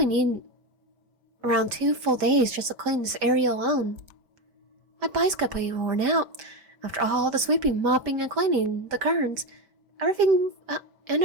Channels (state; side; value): late; left; 5.1 ms